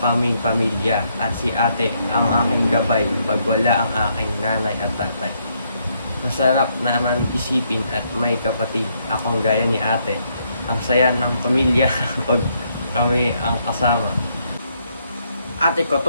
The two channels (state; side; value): inverted; both; correlation -0.74